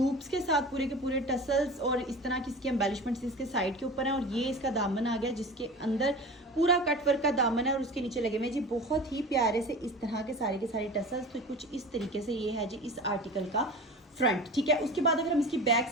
के साथ पूरे के पूरे टसल्स और इस तरह की इसकी एम्बेलिशमेंट्स इसके साइड के ऊपर हैं। और ये इसका दामन आ गया जिसके अंदर पूरा कट वर्क का दामन है और उसके नीचे लगे हुए जी बहुत ही प्यारे से इस तरह के सारे टसल्स। तो कुछ इस तरीके से ये है जी इस आर्टिकल का फ्रंट, ठीक है। उसके बाद अगर हम इसकी बैक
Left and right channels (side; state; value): both; normal; correlation 0.35